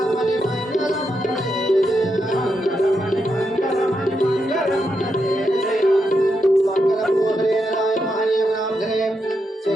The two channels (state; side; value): normal; both; correlation 0.83